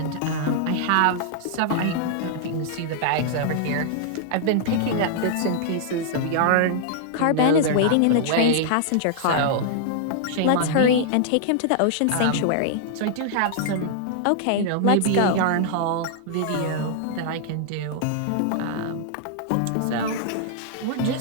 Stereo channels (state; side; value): different; both; correlation -0.01